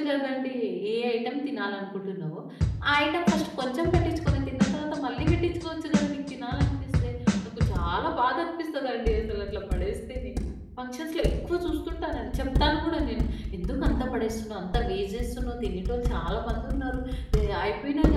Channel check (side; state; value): both; identical; correlation 1.00